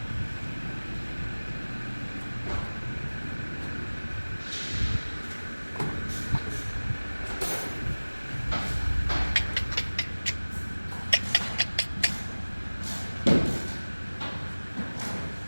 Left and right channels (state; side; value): inverted; both; correlation -1.00